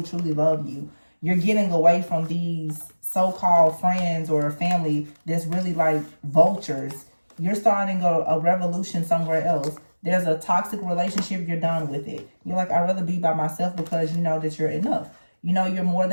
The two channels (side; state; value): both; inverted; correlation -1.00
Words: truly love you. You're getting away from these so-called friends or family that's really like vultures. You're starting a revolution somewhere else. There's a toxic relationship, you're done with it. You're like, I'd rather be by myself because you know that you're enough. You know you're more